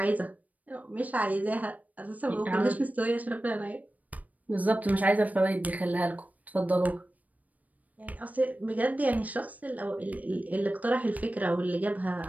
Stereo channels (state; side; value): late; left; 0.074 ms